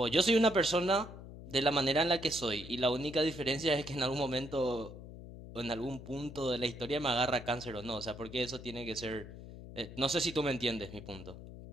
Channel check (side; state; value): left; noise; hum, 14 dB below the sound